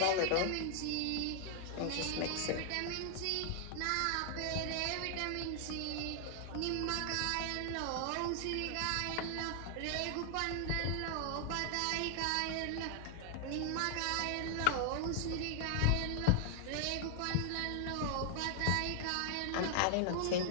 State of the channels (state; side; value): different; both; correlation 0.00